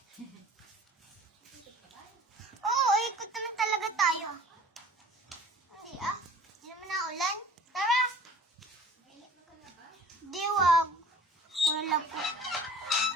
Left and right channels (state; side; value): normal; both; correlation 0.47